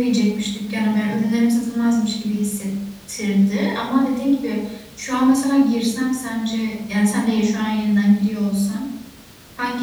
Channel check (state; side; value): identical; both; correlation 1.00